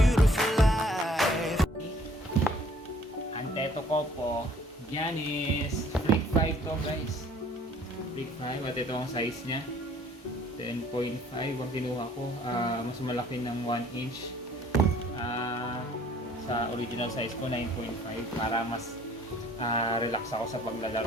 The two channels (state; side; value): normal; both; correlation 0.57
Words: life. Anteto ko po, Giannis Freak 5 to guys. Freak 5 at ito ang size niya. 10.5 ang kinuha ko. Mas malaki ng 1 inch. Sa original size ko 9.5 para mas relax ako sa